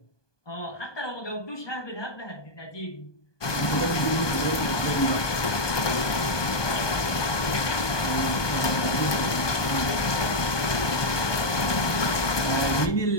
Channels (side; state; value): right; late; 1.2 ms